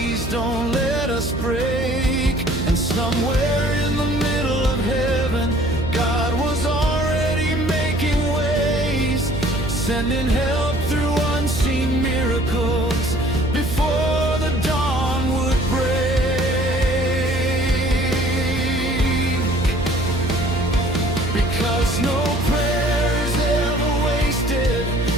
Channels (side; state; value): right; noise; hum, 6 dB below the sound